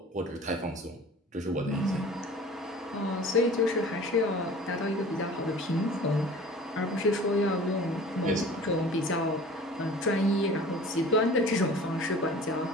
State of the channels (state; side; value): normal; both; correlation 0.44